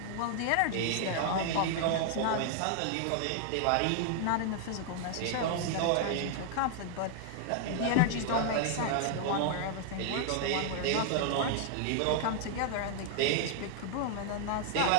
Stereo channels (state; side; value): different; both; correlation 0.00